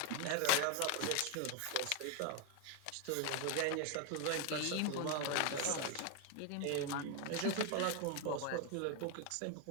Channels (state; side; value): different; both; correlation 0.01